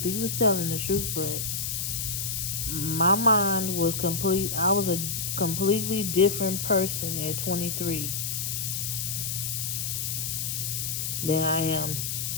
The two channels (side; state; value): left; noise; hiss, 2 dB below the sound